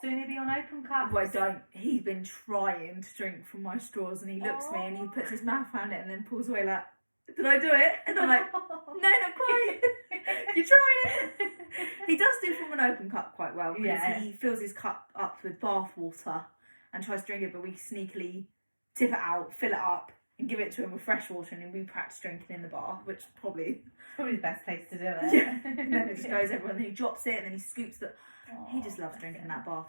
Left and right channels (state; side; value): inverted; both; correlation -1.00